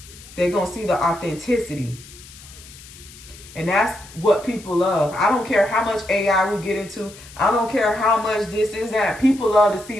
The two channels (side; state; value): left; noise; hiss, 19 dB below the sound